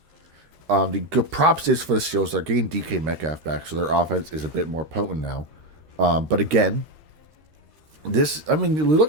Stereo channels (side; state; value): left; late; 13 ms